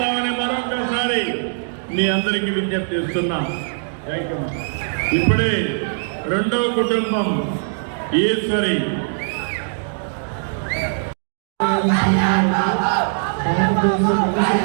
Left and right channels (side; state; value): left; silent; digital silence